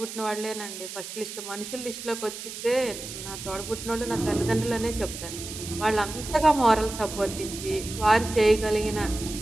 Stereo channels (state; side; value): noise; right; hiss, 10 dB below the sound